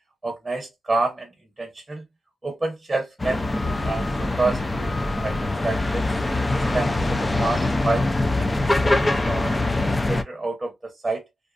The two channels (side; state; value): both; normal; correlation 0.92